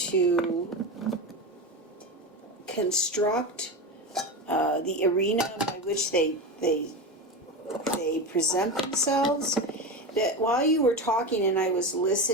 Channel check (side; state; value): both; normal; correlation 0.21